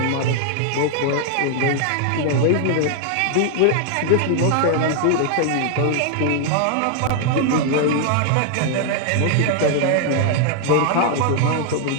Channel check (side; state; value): both; different; correlation 0.00